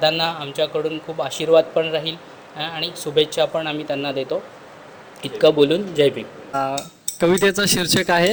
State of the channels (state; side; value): identical; both; correlation 1.00